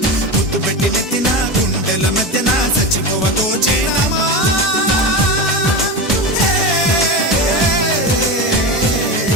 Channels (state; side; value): normal; both; correlation 0.21